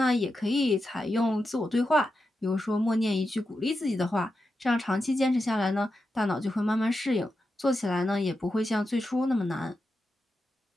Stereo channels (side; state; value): both; normal; correlation 0.89